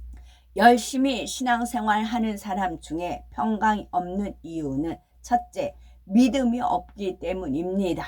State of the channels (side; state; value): both; identical; correlation 1.00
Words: 열심히 신앙생활하는 사람 중에 평강이 없는 이유는 첫째, 믿음이 없기